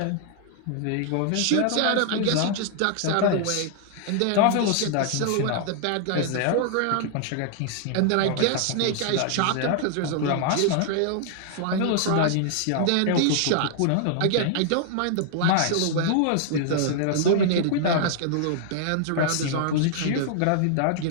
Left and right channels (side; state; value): both; different; correlation -0.01